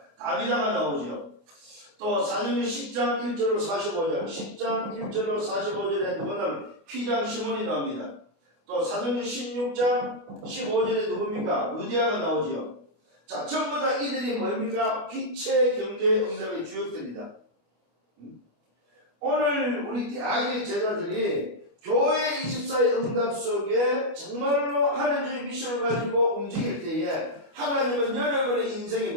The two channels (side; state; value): left; late; 29 ms